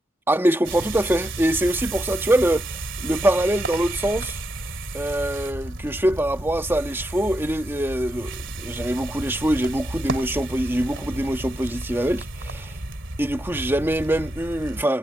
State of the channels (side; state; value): both; normal; correlation 0.83